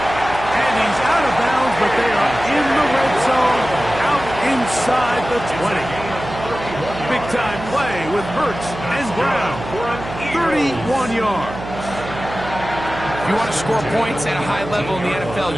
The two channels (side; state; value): right; noise; hum, 10 dB below the sound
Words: And he's out of bounds, but they are in the red zone, out inside the 20. Big-time play with Hurts and Brown for 31 yards. If you want to score points at a high level in the NFL,